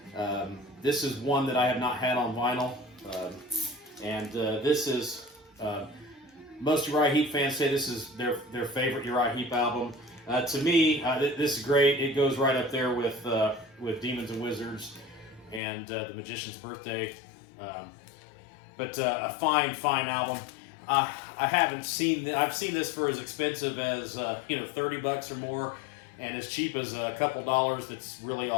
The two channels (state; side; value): drops out; right; at 15.6 s